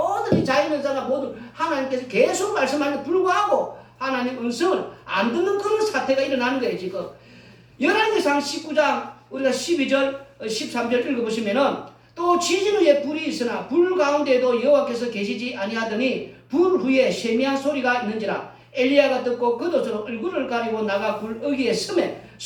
이 자연현상과 모두 하나님께서 계속 말씀하는데 불구하고 하나님 음성을 안 듣는 그런 사태가 일어나는 거예요 지금. 열왕기상 19장 우리가 12절 13절 읽어보시면은 또 지진 후에 불이 있으나 불 가운데에도 여호와께서 계시지 아니하더니 불 후에 세미한 소리가 있는지라. 엘리야가 듣고 겉옷으로 얼굴을 가리고 나가 불 어귀에 서매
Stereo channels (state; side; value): identical; both; correlation 1.00